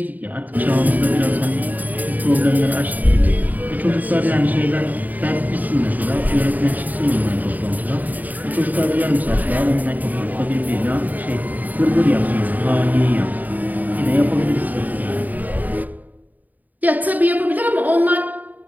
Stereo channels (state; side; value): late; left; 0.081 ms